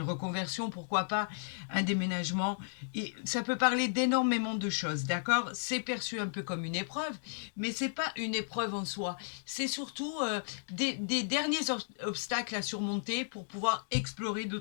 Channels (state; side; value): silent; right; digital silence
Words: reconversion, pourquoi pas, un déménagement. Et ça peut parler d'énormément de choses, d'accord? C'est perçu un peu comme une épreuve, mais c'est pas une épreuve en soi. C'est surtout des derniers obstacles à surmonter pour pouvoir explorer